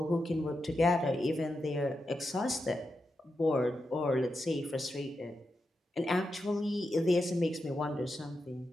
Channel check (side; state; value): both; normal; correlation 0.87